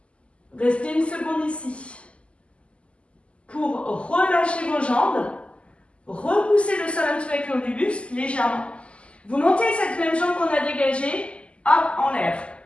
Restez une seconde ici. Pour relâcher vos jambes, repoussez le sol un petit peu avec le haut du buste, légèrement. Vous montez cette même jambe qu'on a dégagée, hop, en l'air.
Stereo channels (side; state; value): right; late; 0.056 ms